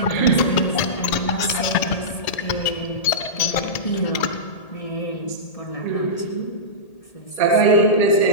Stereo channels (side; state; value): right; late; 1.8 ms